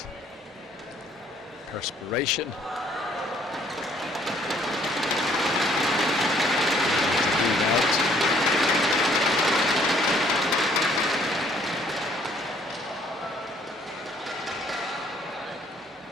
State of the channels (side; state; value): both; normal; correlation 0.63